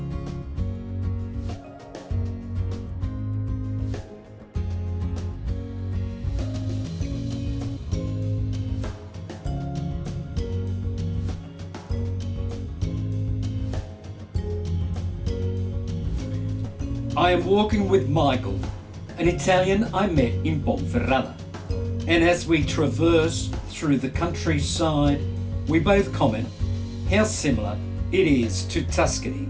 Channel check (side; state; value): both; identical; correlation 1.00